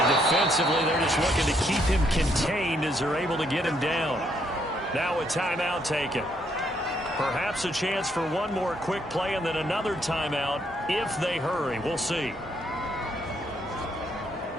defensively, they're just looking to keep him contained as they're able to get him down. Now a timeout taken. Perhaps a chance for one more quick play and then another timeout if they hurry. We'll see.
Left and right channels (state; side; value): normal; both; correlation 0.72